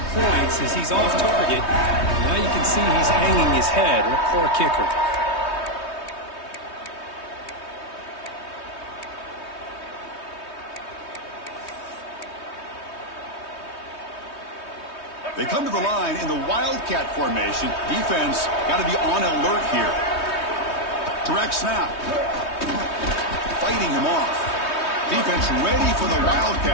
points as he's off target. Now you can see he's hanging his head. A poor kicker. They come to the line in the Wildcat formation. Defense got to be on alert here. Direct snap. Fighting him off. Defense ready for the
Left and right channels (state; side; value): late; right; 3.2 ms